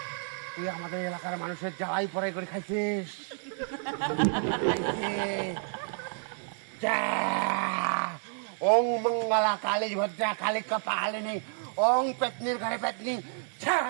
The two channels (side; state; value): left; silent; 58 dB below the other